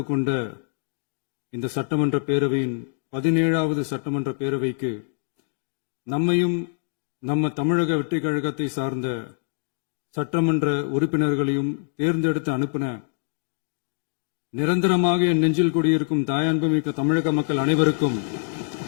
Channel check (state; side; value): silent; right; digital silence